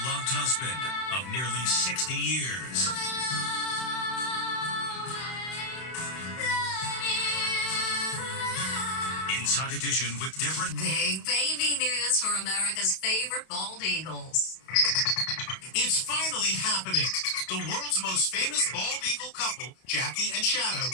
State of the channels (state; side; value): late; right; 31 ms